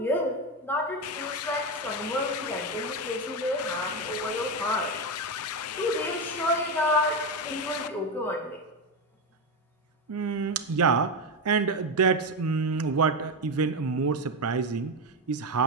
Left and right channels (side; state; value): both; normal; correlation 0.12